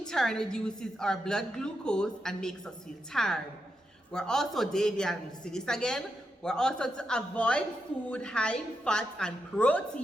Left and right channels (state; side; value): normal; both; correlation 0.85